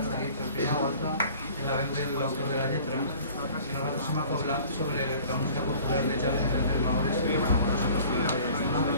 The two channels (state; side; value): inverted; both; correlation -0.48